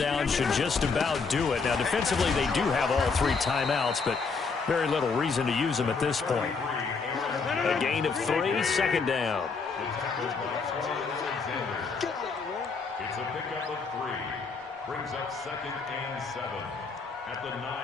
should just about do it. Now, defensively, they do have all 3 timeouts, but very little reason to use them at this point. A gain of 3, 2nd down. Brings up 2nd and 7 at the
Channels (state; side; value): quieter; right; 4.8 dB